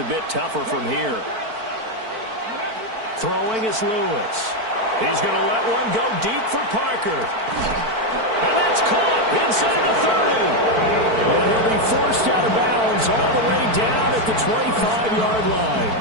bit tougher from here. Throwing is Lewis. He's going to let one go deep for Parker. And that's caught inside the 30. And he'll be forced out of bounds all the way down at the 25-yard line.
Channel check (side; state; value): left; late; 4.5 ms